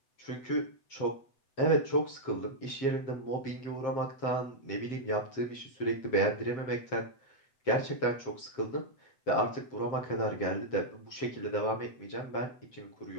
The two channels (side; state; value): right; late; 7.6 ms